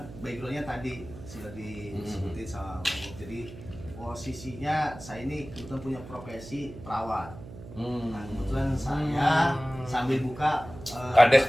backgroundnya tadi sudah disebutin sama Bang Bob. Jadi posisinya saya ini kebetulan punya profesi perawat. Nah, kebetulan saya sambil buka Kades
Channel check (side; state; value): right; noise; hum, 14 dB below the sound